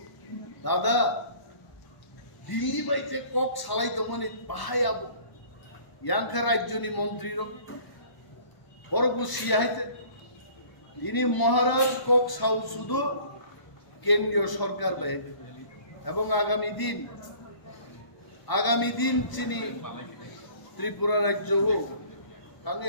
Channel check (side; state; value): right; late; 1.0 ms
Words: দাদা দিল্লি বাইতে কক সালাই তো মানে বাহাই আবো ইয়াংখা রাজ্যনি মন্ত্রী রক বরগু সিয়াইতে তিনি মহারাজ কক সাউ শুধু কেন্দ্রীয় সরকার বাইতে এবং আগামী দিন চিনি ত্রিপুরা রাজ্য হোক তাঙ্গে